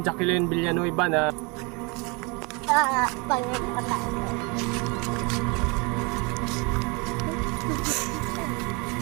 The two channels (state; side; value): quieter; left; 29.6 dB